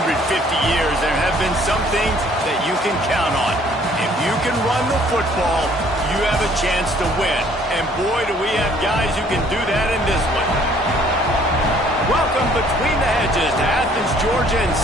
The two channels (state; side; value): normal; both; correlation 0.59